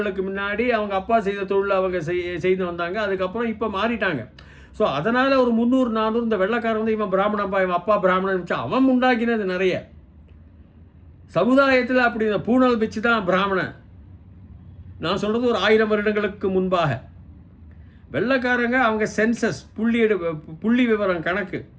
முன்னாடி அவங்க அப்பா செய்த தொழில் அவங்க செய்து வந்தாங்க. அதுக்கப்புறம் இப்போ மாறிட்டாங்க. ஸோ அதனால் ஒரு 300-400 இந்த வெள்ளைக்காரன் இவன் பிராமணப்பா, இவன் அப்பா பிராமணன் வச்சு அவன் உண்டாக்கினது நிறைய. சமுதாயத்தில் அப்படி இந்த பூணல் வச்சு தான் பிராமணன். நான் சொல்கிறது ஒரு 1000 வருடங்களுக்கு முன்பாக. வெள்ளைக்காரங்க அவங்க சென்சஸ், புள்ளி விவரம் கணக்கு,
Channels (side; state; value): both; identical; correlation 1.00